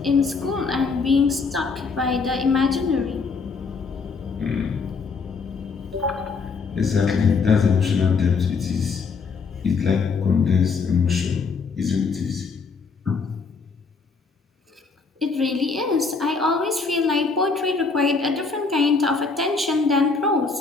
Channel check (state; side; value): quieter; right; 4.7 dB